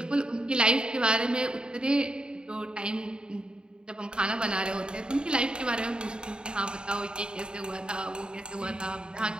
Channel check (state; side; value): late; left; 0.049 ms